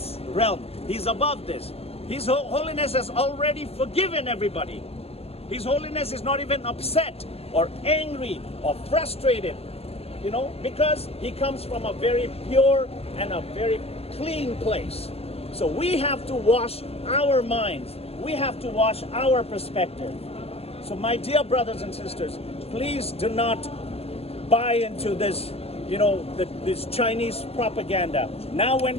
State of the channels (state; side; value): late; right; 0.29 ms